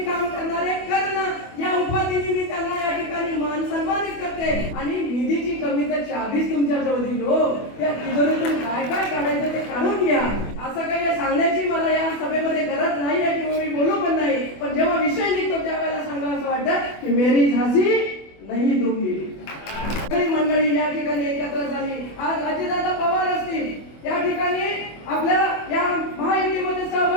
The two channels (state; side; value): late; right; 25 ms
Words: काम करणारे करणं या उपाधीने मी त्यांना या ठिकाणी मान सन्मानित करते. आणि निधीची कमी तर चाबीच तुमच्या जवळ दिली हो. त्या तिजोरीतून काय काय काढायचं ते काढून घ्या. असं काही सांगण्याची मला या सभेमध्ये गरज नाही आहे किंवा मी बोलू पण नाही. पण जेव्हा विषय निघतो त्यावेळेला सांगा असं वाटतं की मेरी झाशी नाही दूंगी. मंडळी या ठिकाणी एकत्र झाली. आज अजितदादा पवार असतील या ठिकाणी आपल्या या महायुतीमध्ये